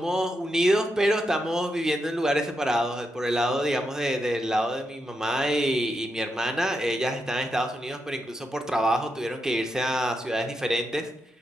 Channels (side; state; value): both; normal; correlation 0.85